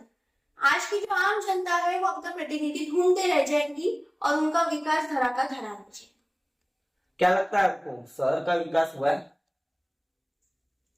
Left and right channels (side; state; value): both; identical; correlation 1.00